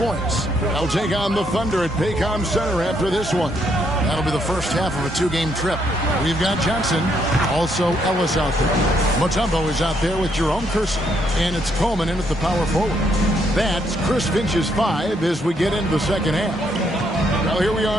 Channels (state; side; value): normal; both; correlation 0.73